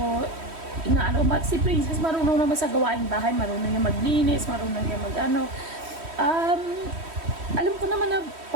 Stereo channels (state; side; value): late; left; 3.1 ms